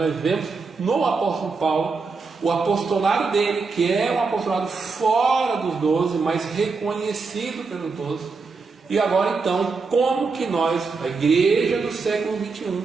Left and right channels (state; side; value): quieter; left; 4.5 dB